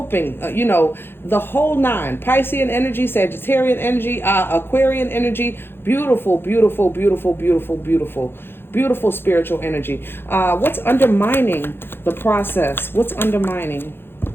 the whole nine. Piscean energy, Sagittarian energy, Aquarian energy, beautiful, beautiful, beautiful, beautiful, beautiful. Beautiful spiritual energy. What's undermining the process? What's undermining?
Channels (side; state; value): right; late; 0.11 ms